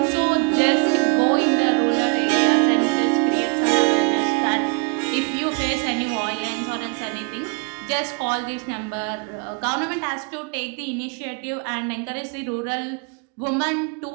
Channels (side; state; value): left; quieter; 35.0 dB